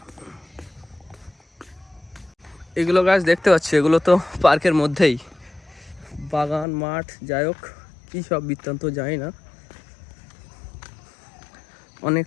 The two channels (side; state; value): right; drops out; at 6.7 s